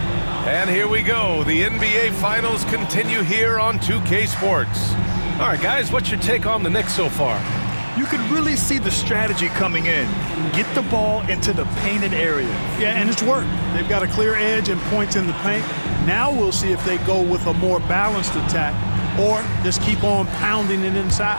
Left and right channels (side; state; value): both; inverted; correlation -1.00